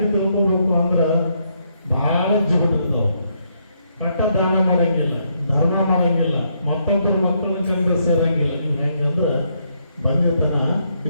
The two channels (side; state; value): both; inverted; correlation -0.75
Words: ತಿಳ್ಕೋಬೇಕು ಅಂದ್ರೆ, ಬಹಳ ಜಿಗುಟ್ಟಿರ್ತಾವ. ಕಟ್ಟ ದಾನ ಮಾಡಂಗಿಲ್ಲ, ಧರ್ಮ ಮಾಡಂಗಿಲ್ಲ, ಮತ್ತೊಬ್ಬರ ಮಕ್ಕಳನ್ನ ಕರೆದು ಸೇರಂಗಿಲ್ಲ. ಹೆಂಗಂದ್ರೆ ಬಂದಿತನ